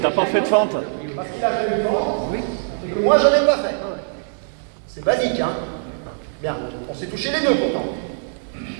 pas fait de fente. Parce qu'il a fait une fente, et que moi, j'en ai pas fait. C'est basique, hein? Bien, on s'est touché les deux pourtant.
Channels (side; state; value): left; silent; digital silence